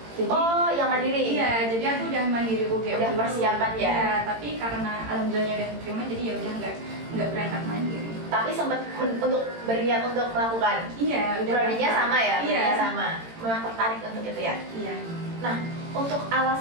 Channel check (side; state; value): left; late; 18 ms